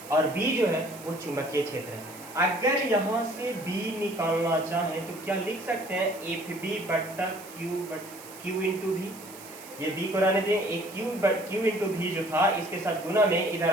और B जो है वो चुंबकीय क्षेत्र है। अगर यहाँ से B निकालना चाहें तो क्या लिख सकते हैं, FB बट्टा Q इंटू V, ये B को रहने दें, एक Q इंटू V जो था इसके साथ गुना में इधर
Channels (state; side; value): noise; right; hiss, 17 dB below the sound